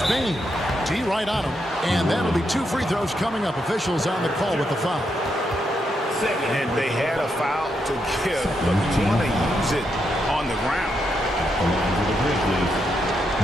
Bain. T right on him. And that'll be 2 free throws coming up. Officials on the call with the foul. And they had a foul to give, but you want to use it on the ground. Along with the Grizzlies,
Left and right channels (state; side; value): normal; both; correlation 0.81